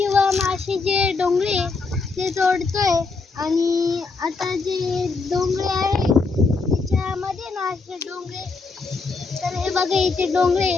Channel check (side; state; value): right; quieter; 4.2 dB